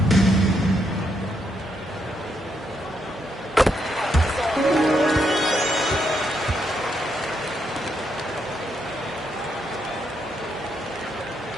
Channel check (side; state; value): both; normal; correlation 0.78